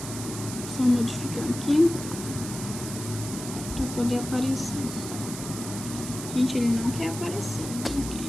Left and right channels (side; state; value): right; noise; hiss, 9 dB below the sound